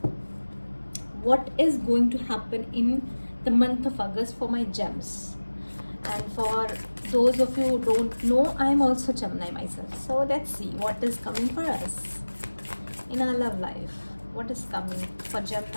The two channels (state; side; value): inverted; both; correlation -1.00